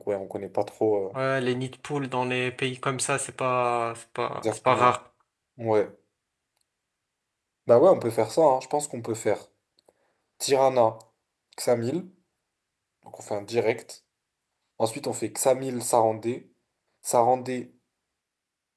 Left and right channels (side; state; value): both; identical; correlation 1.00